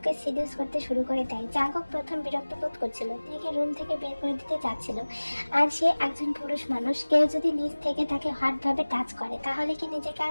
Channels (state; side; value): inverted; both; correlation -1.00